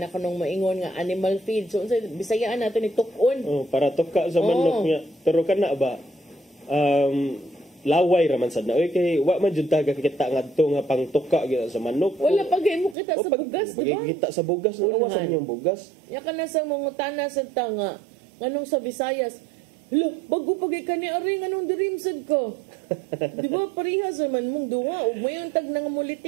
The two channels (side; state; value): left; drops out; at 13.0 s